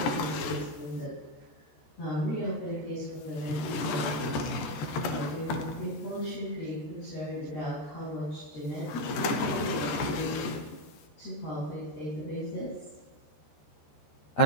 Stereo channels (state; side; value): late; right; 14 ms